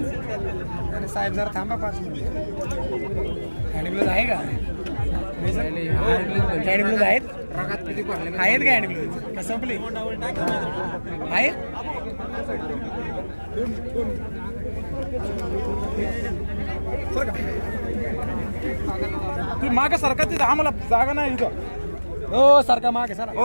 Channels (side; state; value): both; inverted; correlation -1.00